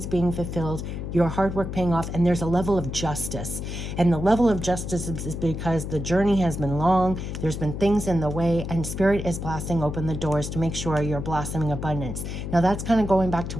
being fulfilled. your hard work paying off, and there's a level of justice. And the level of justice is because the journey has been long, there's been things in the way, and Spirit is blasting open the doors to make sure you're blossoming abundance. Now that's kind of going back to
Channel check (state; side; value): noise; left; hum, 6 dB below the sound